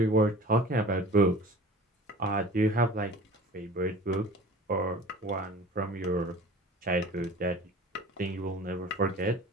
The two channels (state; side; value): normal; both; correlation 0.42